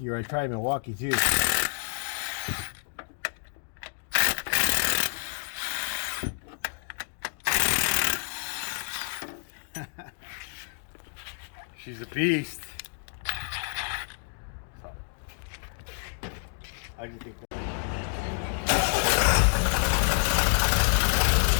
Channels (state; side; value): silent; right; digital silence